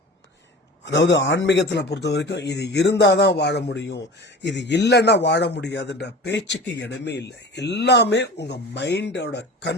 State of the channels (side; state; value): both; normal; correlation 0.36